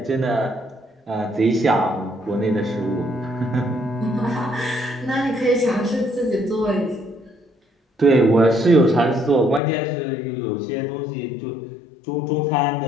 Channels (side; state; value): right; drops out; at 9.6 s